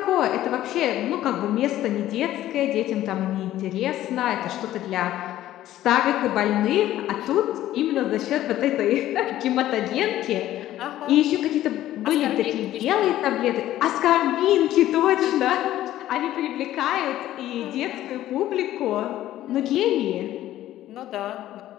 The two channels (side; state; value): right; quieter; 13.6 dB